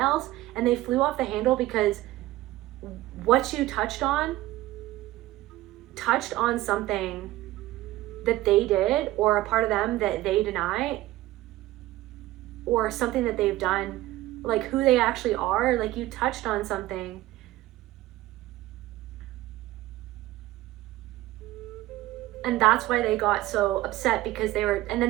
and they flew off the handle because what you touched on something that they did, or a part of them that they deny, or something that they've done, like who they actually are. Like you touched on something. And that's why they got so upset, because they were, and then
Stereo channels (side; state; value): left; quieter; 16.5 dB